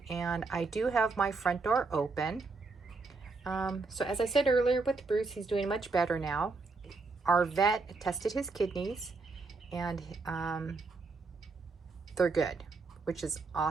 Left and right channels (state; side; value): quieter; left; 4.0 dB